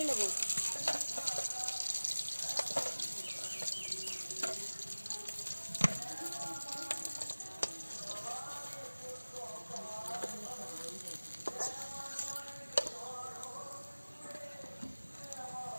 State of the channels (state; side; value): inverted; both; correlation -1.00